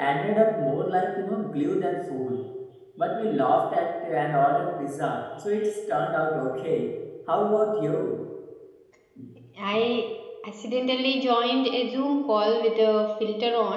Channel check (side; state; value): both; identical; correlation 1.00